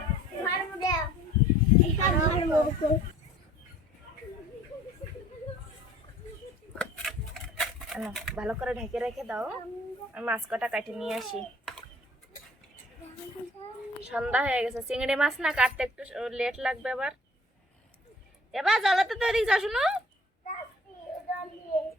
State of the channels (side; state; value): both; normal; correlation 0.53